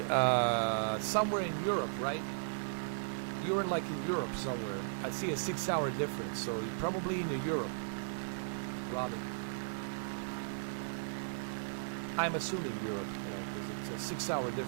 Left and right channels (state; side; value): silent; left; digital silence